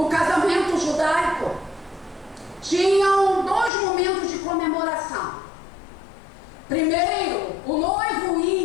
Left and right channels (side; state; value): right; drops out; at 3.7 s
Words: casamento judaico, tinham 2 momentos de comemoração. Primeiro, o noivo